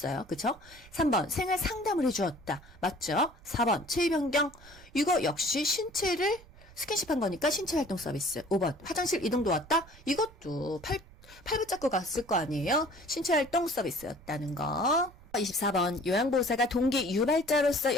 그쵸? 3번 생활 상담을 해주었다. 맞죠? 4번 체위 변경 이거 역시 신체를 스킨십한 거니까 신체활동 서비스. 5번 화장실 이동도 왔다? 이것도 팔 붙잡고 갔을 거 아니에요? 신체활동 서비스였다는 거. 24번 요양보호사가 동기 유발자로서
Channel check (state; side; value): noise; right; rumble, 22 dB below the sound